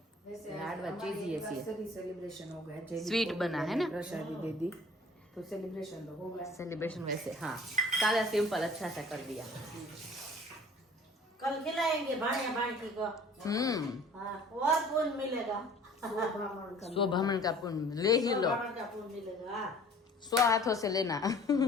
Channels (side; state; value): both; normal; correlation 0.50